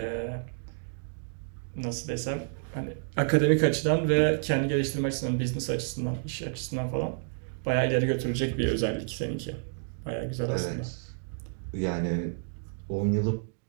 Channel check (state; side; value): silent; left; digital silence